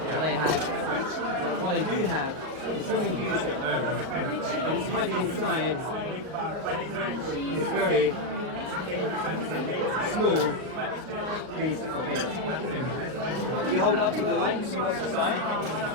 I have. But what I do have is something beautiful. And it's hiding inside this very small piece of paper. You hold it up to the light and see what's inside.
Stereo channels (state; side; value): late; left; 38 ms